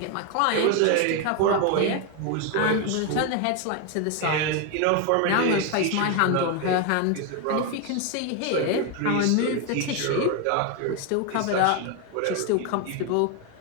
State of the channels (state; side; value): different; both; correlation 0.01